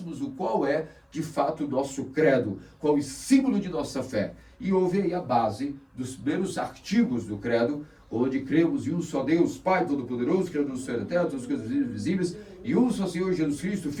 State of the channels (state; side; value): identical; both; correlation 1.00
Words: o qual é de fato o nosso credo, qual é o símbolo de nossa fé. E houve aí a base dos primeiros artigos do credo, onde cremos em um só Deus, Pai Todo-Poderoso, Criador do céu e da terra, todas as coisas visíveis, e um só Senhor Jesus Cristo,